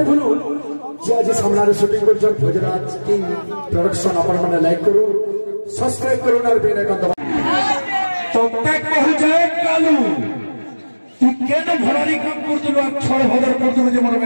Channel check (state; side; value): inverted; both; correlation -1.00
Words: ভুলুন যে আজ সামনে শুটিং করছেন ফেদিরাজ কিং প্রোডাকশন আপনারা লাইক করুন সাবস্ক্রাইব করুন আর বেল আইকন দবাওয়া তো ট্যাগ কহু যায় কালু তুই কেন ভরারি কাম করতুল আর ছড় ভদর করতুল যে মনে